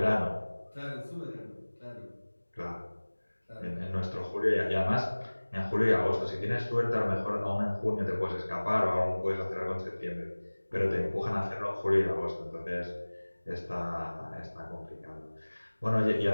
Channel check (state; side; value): inverted; both; correlation -1.00